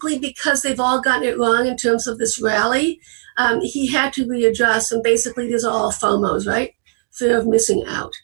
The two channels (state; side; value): silent; left; digital silence